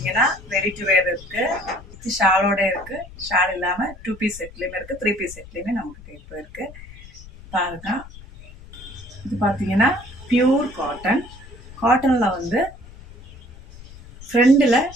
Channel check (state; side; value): noise; left; rumble, 18 dB below the sound